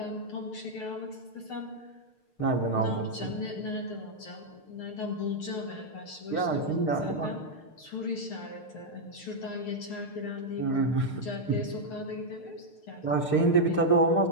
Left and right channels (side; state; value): right; late; 6.6 ms